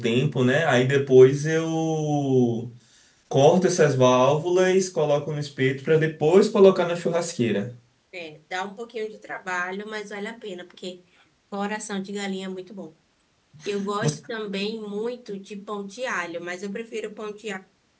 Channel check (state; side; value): identical; both; correlation 1.00